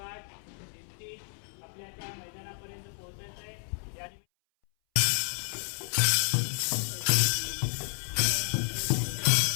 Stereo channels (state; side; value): silent; right; 57 dB below the other